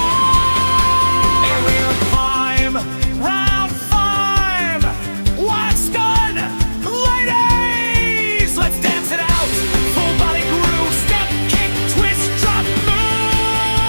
And we'll climb. Round 5. What's done? Ladies, let's dance it out. Full body groove. Step, kick, twist, drop, move.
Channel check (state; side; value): inverted; both; correlation -1.00